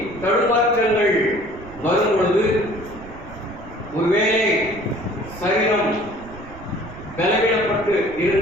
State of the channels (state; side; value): noise; right; rumble, 17 dB below the sound